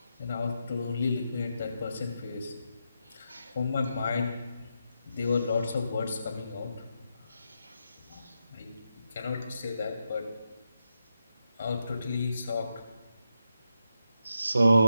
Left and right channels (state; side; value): inverted; both; correlation -0.85